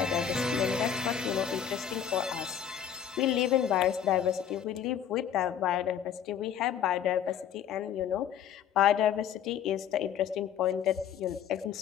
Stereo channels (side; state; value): right; quieter; 9.0 dB